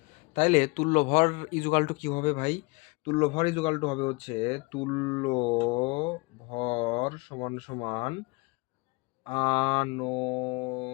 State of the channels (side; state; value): right; quieter; 26.3 dB